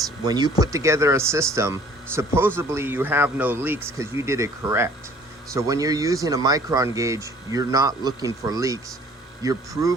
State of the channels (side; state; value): both; normal; correlation 0.54